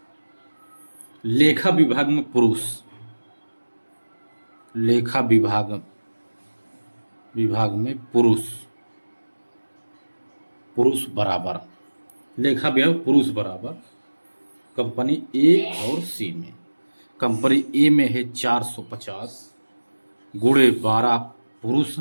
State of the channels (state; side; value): inverted; both; correlation -1.00